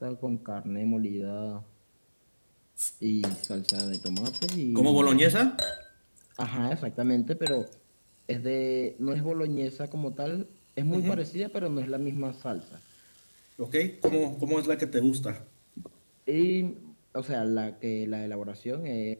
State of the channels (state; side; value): inverted; both; correlation -1.00